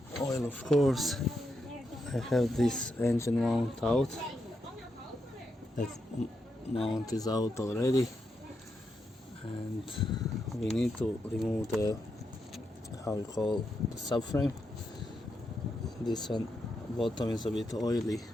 oil of course. I have this engine mount out, that mount is out already, and we need to remove the, how we call, the subframe. This one bottom is a bit oily,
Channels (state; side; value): normal; both; correlation 0.83